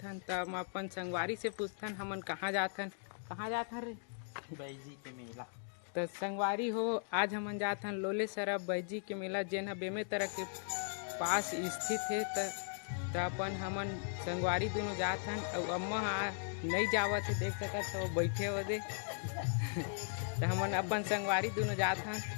तो हम अपन संगवारी से पूछथन हमन कहाँ जाथन रे बैजी के मेला। तो संगवारी हो आज हमन जाथन लोले सरा बैजी के मेला जेन बेमे तरह के पास स्थित है। तो अपन हमन संगवारी दोनों जाथन और अम्मा नहीं जावत है देख सकत हो बैठे हो दे तो हमन अपन संगवारी दोनों जाथन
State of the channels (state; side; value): silent; right; digital silence